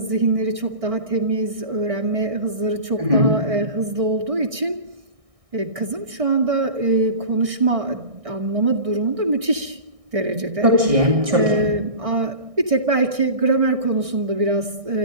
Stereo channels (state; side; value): late; left; 1.6 ms